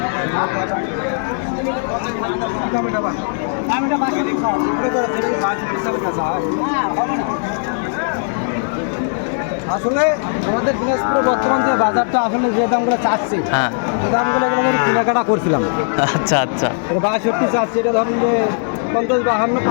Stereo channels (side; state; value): right; silent; digital silence